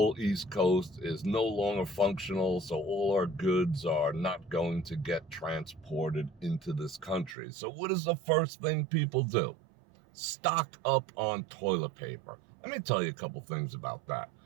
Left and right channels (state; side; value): drops out; left; at 7.4 s